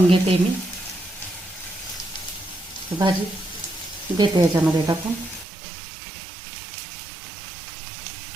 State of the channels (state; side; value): drops out; left; at 5.5 s